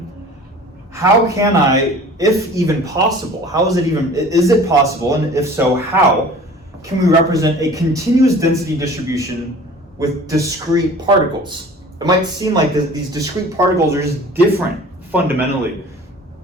how can I, if even possible, is it possible, and if so, how can we represent a continuous density distribution with discrete particles? It might seem like these discrete particles are just different fundamentally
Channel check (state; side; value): normal; both; correlation 0.45